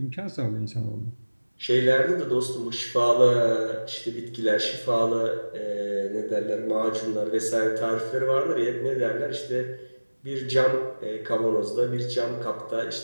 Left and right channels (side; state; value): both; inverted; correlation -1.00